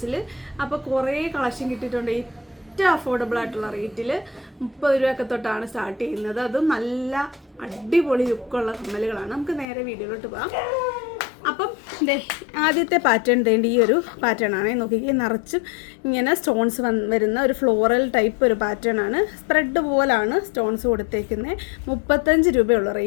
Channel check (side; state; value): right; drops out; at 9.7 s